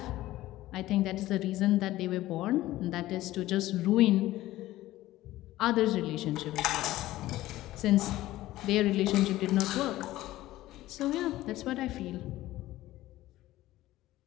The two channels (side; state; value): right; quieter; 16.0 dB